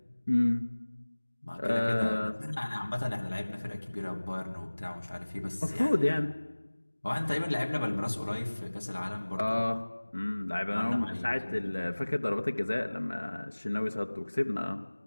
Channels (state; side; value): inverted; both; correlation -1.00